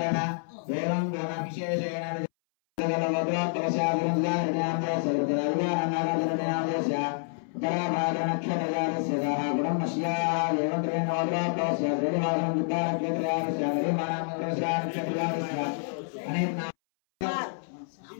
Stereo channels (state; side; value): silent; right; 59 dB below the other